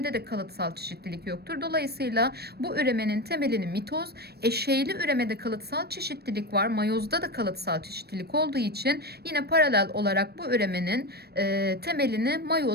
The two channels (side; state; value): left; late; 0.47 ms